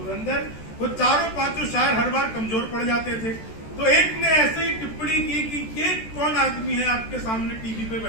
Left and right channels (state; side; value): late; right; 14 ms